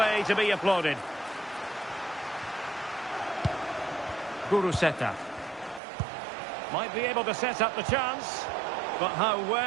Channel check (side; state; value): left; drops out; at 5.8 s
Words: to be applauded. Guruseta. Might be able to set up the chance. But how